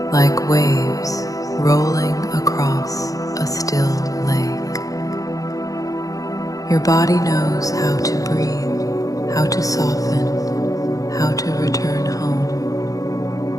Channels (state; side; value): late; right; 0.17 ms